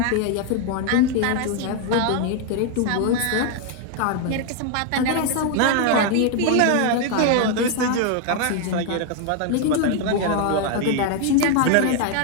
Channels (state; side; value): different; both; correlation 0.01